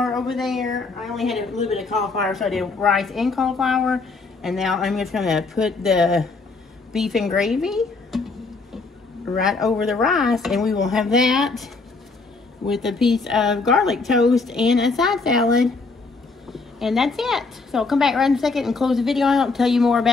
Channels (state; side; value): quieter; right; 3.9 dB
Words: over there. I only had a little bit of cauliflower, so I did rice and cauliflower. And now I'm just going to put the beef and gravy right over the rice, and we will have that with a piece of garlic toast and a side salad. And that's it. So I'll come back right in a second and close the video out and tell you more